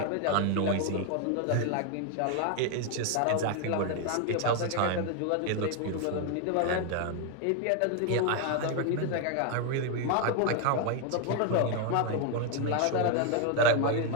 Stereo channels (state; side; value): different; both; correlation 0.01